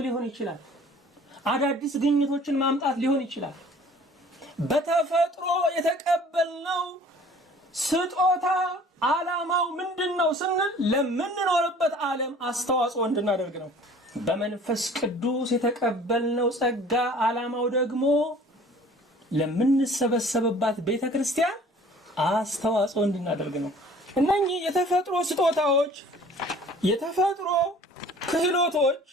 ሊሆን ይችላል፣ አዳዲስ ግኝቶችን ማምጣት ሊሆን ይችላል። በተፈጥሮ የተቀበልነው ስጦታ ዓላማው ምንድነው ስንል ለምንኖርበት ዓለም አስተዋጽኦ እንድናደርግ ነው። በመንፈስ ቅዱስ የተቀበልነው ጸጋ ዓላማው ደግሞ ለምንሰበሰብባት ቤተክርስቲያን አስተዋጽኦ እንድናደርግ ነው። እነኚህ የተፈጥሮ ስጦታዎች፣ የተፈጥሮ ክህሎቶች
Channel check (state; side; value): normal; both; correlation 0.50